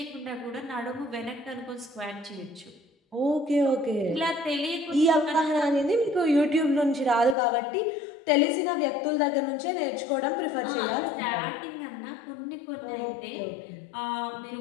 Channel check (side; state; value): right; drops out; at 7.4 s